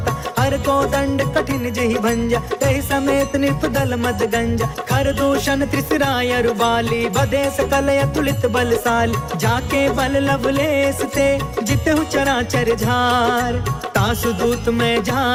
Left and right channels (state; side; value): identical; both; correlation 1.00